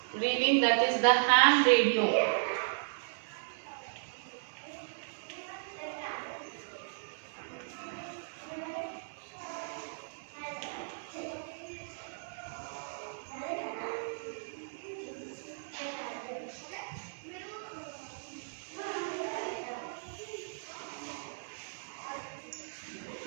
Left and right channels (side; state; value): left; silent; digital silence